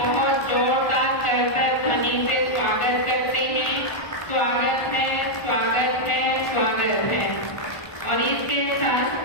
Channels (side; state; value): right; late; 1.4 ms